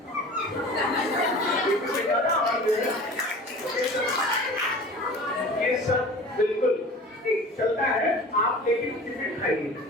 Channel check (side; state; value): both; normal; correlation 0.40